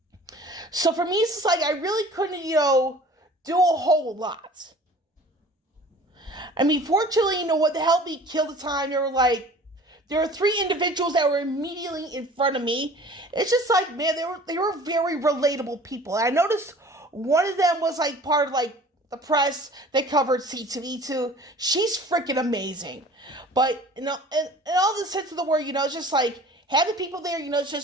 So for me, it's just like I really couldn't, do a whole lot. I mean, fortunately, what helped me kill the time, there were 3 individuals that were immediately in front of me. It's just like, man, they were very relatable people. And I noticed one of them was like part of like the press that covered C2E2. She's freaking amazing. But, in all the sense of the word, it's just like having people there,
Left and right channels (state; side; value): normal; both; correlation 0.46